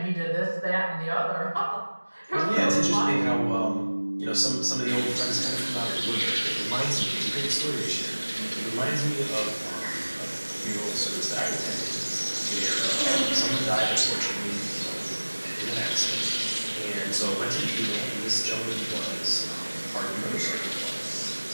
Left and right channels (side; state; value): both; inverted; correlation -1.00